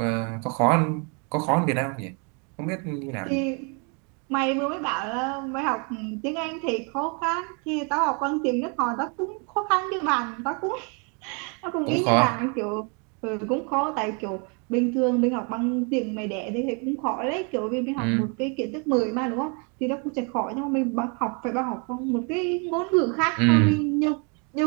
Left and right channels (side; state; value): left; quieter; 35.5 dB